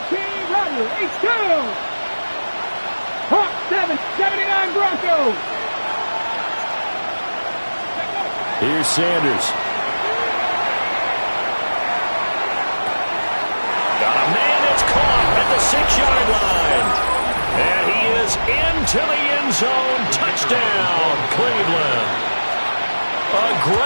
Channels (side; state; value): both; inverted; correlation -1.00